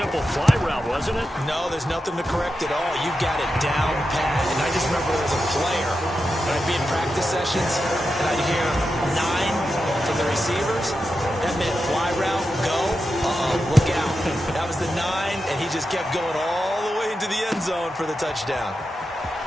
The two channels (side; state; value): both; normal; correlation 0.89